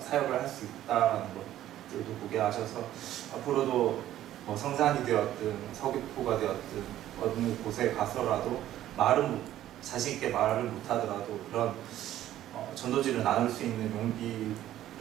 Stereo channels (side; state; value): left; quieter; 12.9 dB